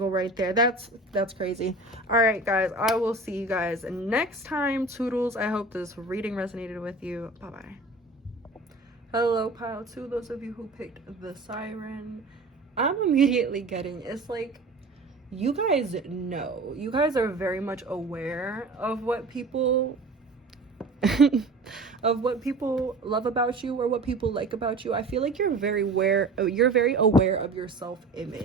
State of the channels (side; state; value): left; quieter; 3.1 dB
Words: right there. That's crazy. All right, guys, I will see you guys next time. Toodles. I hope this reading resonated with you. Bye-bye. Hello, pile 2. Those of you who picked the siren, I'm immediately getting, it's like, you guys know. You guys are very much aware of what people of what people love about you or what people like about you. I feel like you're very aware of your